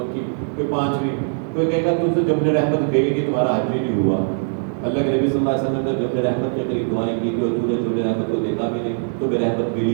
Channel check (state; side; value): silent; left; digital silence